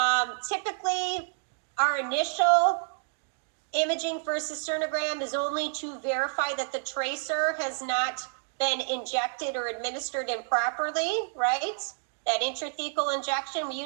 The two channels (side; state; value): left; silent; digital silence